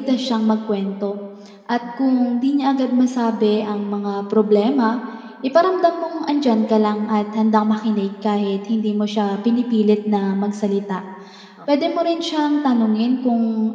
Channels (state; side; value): identical; both; correlation 1.00